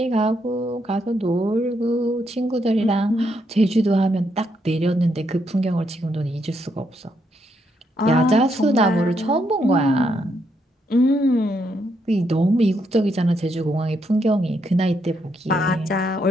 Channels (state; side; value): normal; both; correlation 0.77